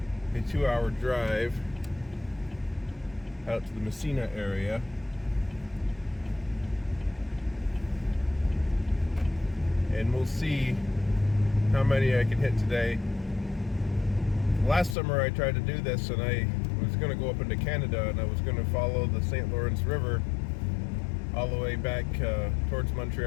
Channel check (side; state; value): right; drops out; at 15.0 s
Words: 2-hour drive out to the Messina area. And we'll see how many I can hit today. Last summer I tried to do this, and I was going to go up into Canada, and I was going to follow the St. Lawrence River all the way back towards